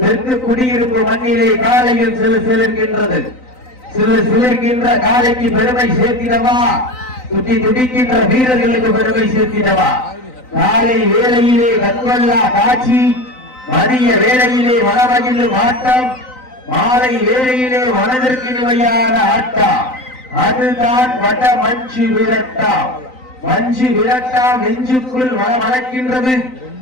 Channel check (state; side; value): late; right; 3.9 ms